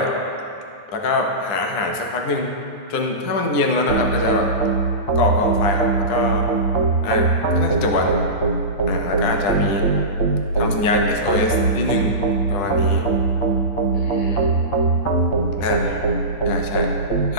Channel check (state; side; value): late; right; 10 ms